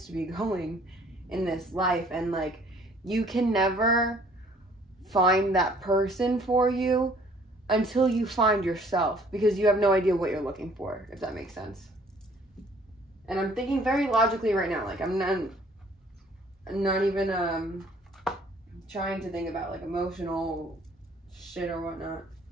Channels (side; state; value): both; normal; correlation 0.58